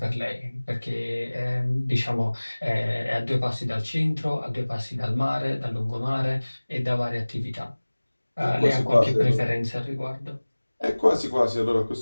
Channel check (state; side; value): inverted; both; correlation -1.00